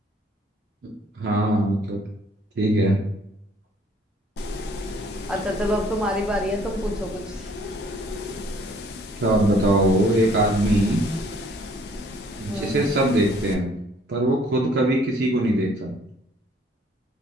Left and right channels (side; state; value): both; normal; correlation 0.60